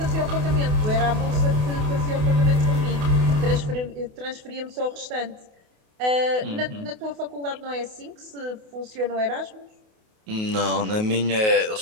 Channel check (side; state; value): left; late; 28 ms